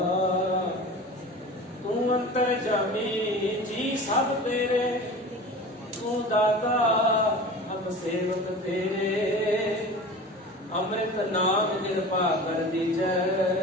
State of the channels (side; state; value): both; normal; correlation 0.36